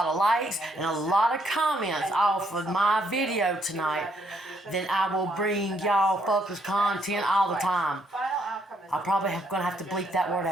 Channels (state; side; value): normal; both; correlation 0.71